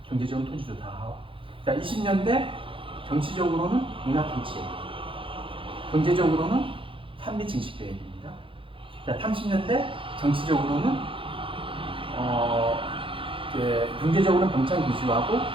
경제적으로 토지조사 사업. 자, 20년대 정치적으로는 문화통치예요. 경제적으로는 산미 증식 계획입니다. 자, 30년대 정치적으로는 경제적으로는 병창 기수하고,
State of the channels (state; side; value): late; left; 0.25 ms